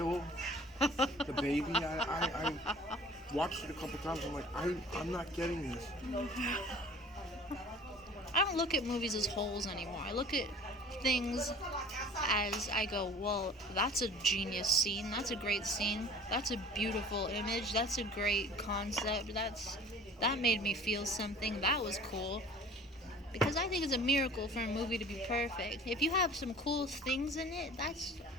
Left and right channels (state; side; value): normal; both; correlation 0.46